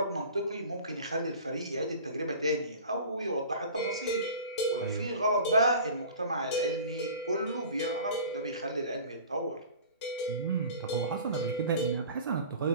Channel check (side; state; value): both; inverted; correlation -0.42